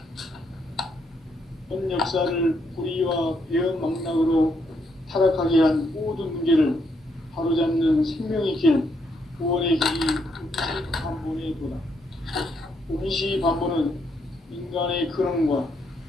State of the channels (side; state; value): both; normal; correlation 0.75